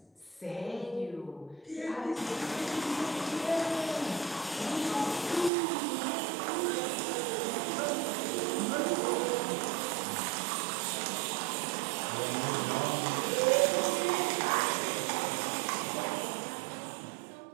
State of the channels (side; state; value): left; drops out; at 5.5 s